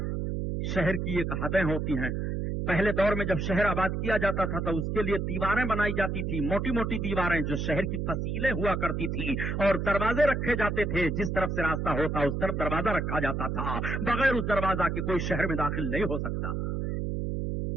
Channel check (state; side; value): noise; right; hum, 1 dB below the sound